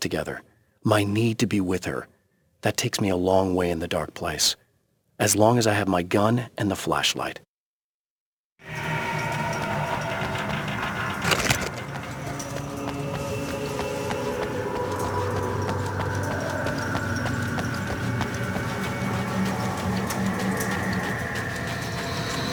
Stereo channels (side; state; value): both; identical; correlation 1.00